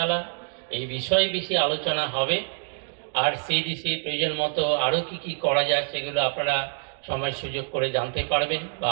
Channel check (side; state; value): left; silent; digital silence